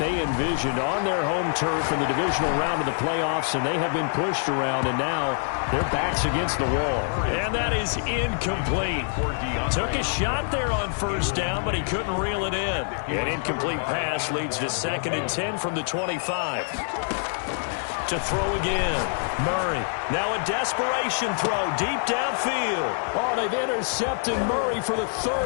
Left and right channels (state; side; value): silent; right; digital silence